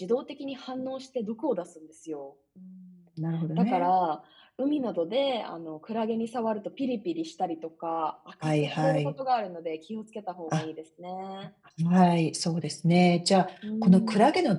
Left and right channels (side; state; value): both; identical; correlation 1.00